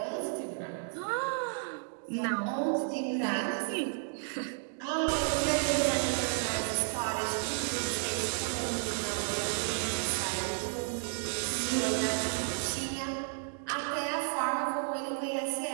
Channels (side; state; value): left; silent; 56 dB below the other